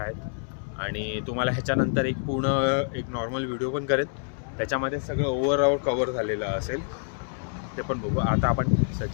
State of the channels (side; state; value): right; silent; digital silence